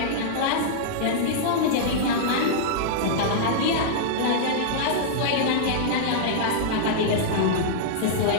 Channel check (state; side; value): different; both; correlation -0.02